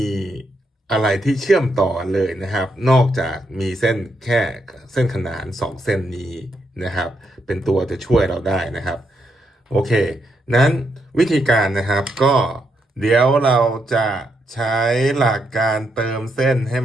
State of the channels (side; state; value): both; normal; correlation 0.79